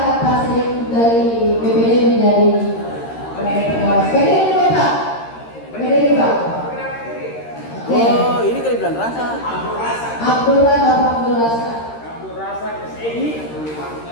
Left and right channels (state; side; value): late; right; 13 ms